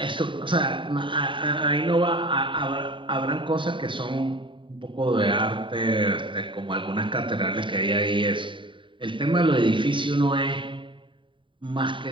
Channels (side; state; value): left; late; 0.24 ms